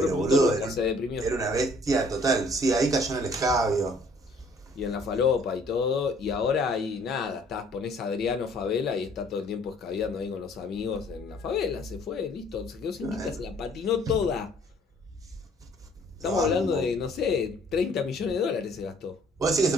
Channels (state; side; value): normal; both; correlation 0.58